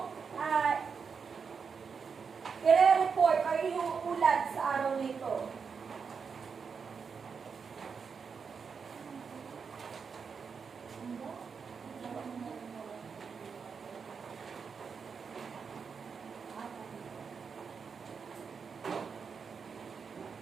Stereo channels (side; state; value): left; quieter; 5.9 dB